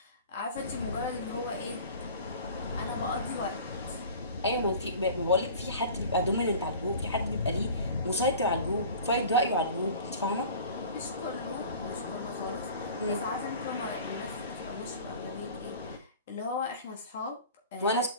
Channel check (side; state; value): both; inverted; correlation -0.42